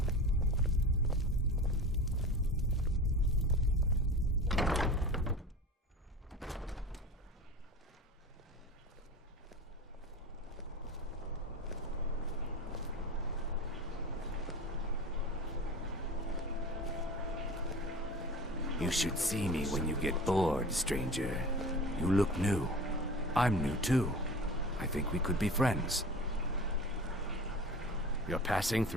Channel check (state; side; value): normal; both; correlation 0.35